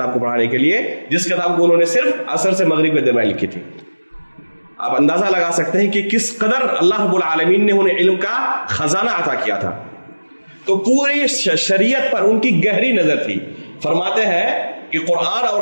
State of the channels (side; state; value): both; inverted; correlation -1.00